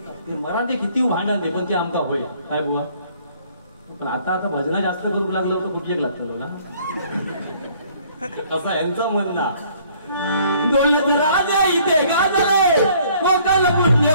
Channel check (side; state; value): both; inverted; correlation -0.59